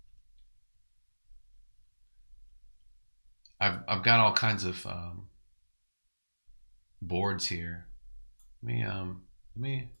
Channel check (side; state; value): both; inverted; correlation -1.00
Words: I've got all kinds of boards here. Let me.